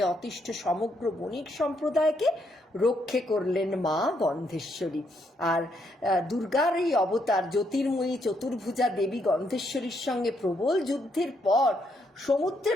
অতিষ্ঠ সমগ্র বণিক সম্প্রদায়কে রক্ষে করলেন মা গন্ধেশ্বরী। আর দুর্গার এই অবতার জ্যোতির্ময়ী চতুর্ভুজা দেবী গন্ধেশ্বরীর সঙ্গে প্রবল যুদ্ধের পর সমুদ্রে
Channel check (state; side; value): normal; both; correlation 0.75